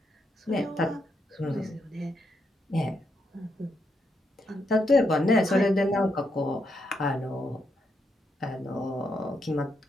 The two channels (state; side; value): normal; both; correlation 0.80